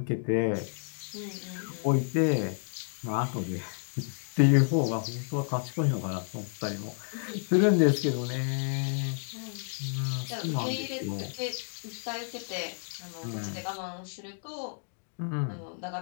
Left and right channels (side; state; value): right; silent; digital silence